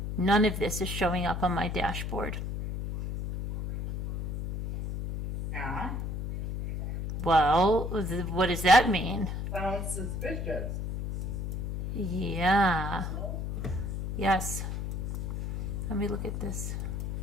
None of this is showing up on my dashboard. Yeah, Well, what does that mean? sounds suspicious. Yeah. Yes. Let me look at this.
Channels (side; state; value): left; noise; hum, 4 dB below the sound